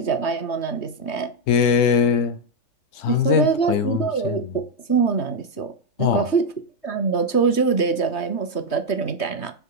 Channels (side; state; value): right; late; 3.2 ms